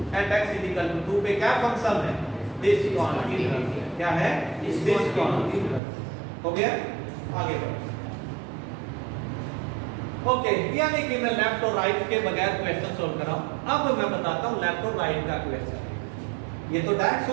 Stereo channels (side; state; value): left; drops out; at 5.8 s